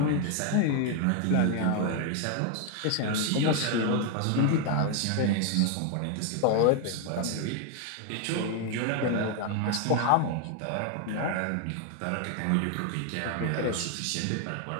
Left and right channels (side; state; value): both; different; correlation 0.01